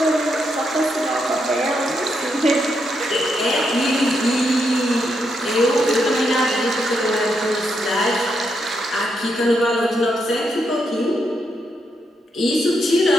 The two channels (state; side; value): normal; both; correlation 0.80